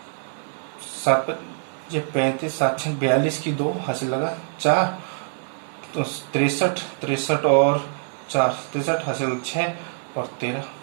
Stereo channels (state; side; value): silent; left; 62 dB below the other